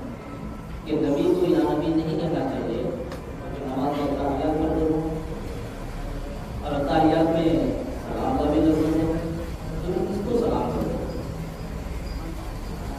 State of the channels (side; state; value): both; identical; correlation 1.00